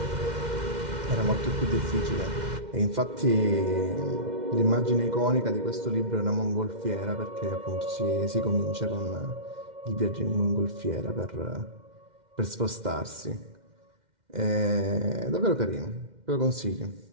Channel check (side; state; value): left; late; 2.1 ms